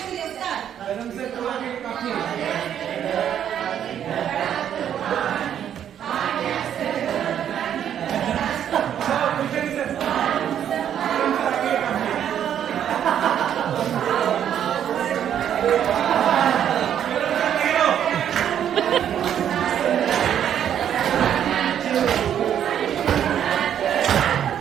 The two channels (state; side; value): quieter; left; 9.6 dB